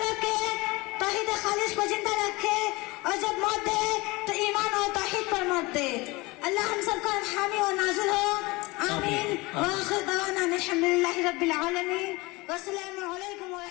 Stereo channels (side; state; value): right; quieter; 23.2 dB